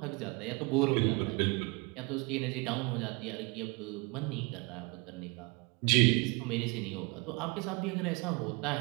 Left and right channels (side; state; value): left; quieter; 28.4 dB